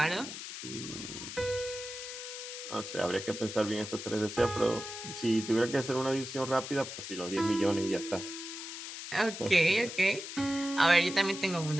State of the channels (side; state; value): left; noise; hiss, 9 dB below the sound